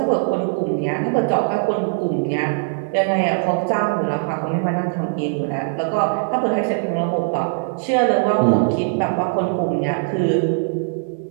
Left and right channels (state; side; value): silent; left; digital silence